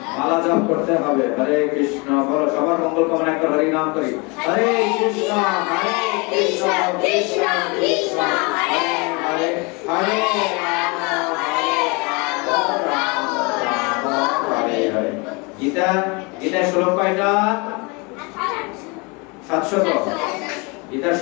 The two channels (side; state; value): right; quieter; 28.9 dB